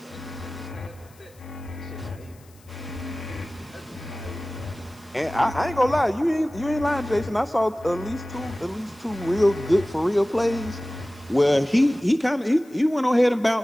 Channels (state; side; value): noise; left; hiss, 28 dB below the sound